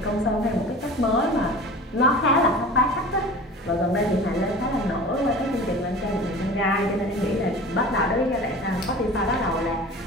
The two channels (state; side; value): normal; both; correlation 0.38